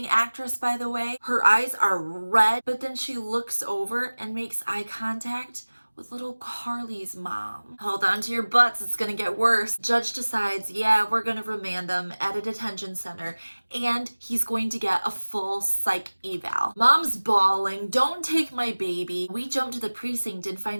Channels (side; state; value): both; inverted; correlation -1.00